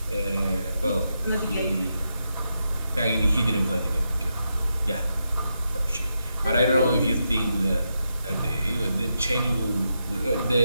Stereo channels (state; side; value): inverted; both; correlation -0.85